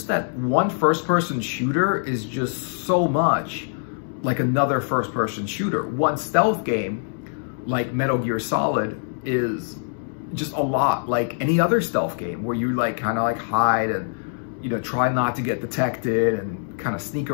that one first-person shooter is just so much like another first-person shooter. One stealth game, like Metal Gear Solid, is just a lot like any other stealth game where you like kind of like hide and, you know, try not to get detected and kind of sneak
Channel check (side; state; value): right; silent; digital silence